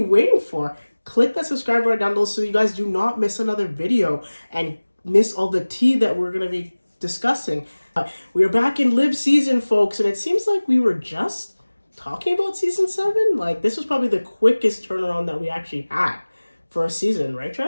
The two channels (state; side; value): inverted; both; correlation -1.00